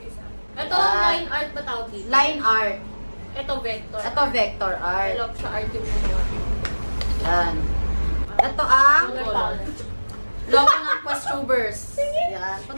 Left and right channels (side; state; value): both; inverted; correlation -1.00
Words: isa. Ito, Yan. line art ba tawag dito? Line art. Ito, vector. Ito vector art. Look sa art yung gumawa. Yan. Ito ang Color palette. logo ng Questtubers. Yan.